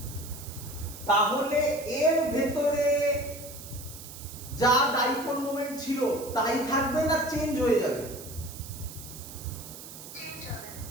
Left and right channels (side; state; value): right; noise; hiss, 14 dB below the sound